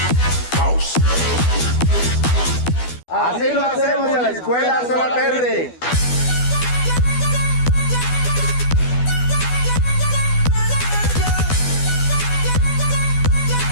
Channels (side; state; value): right; late; 12 ms